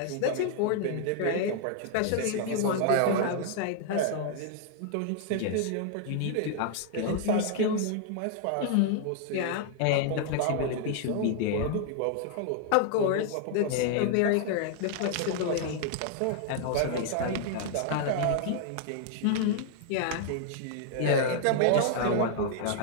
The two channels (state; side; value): different; both; correlation 0.00